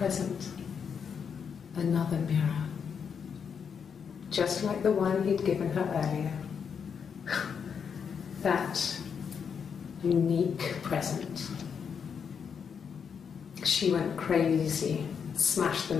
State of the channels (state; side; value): quieter; right; 6.8 dB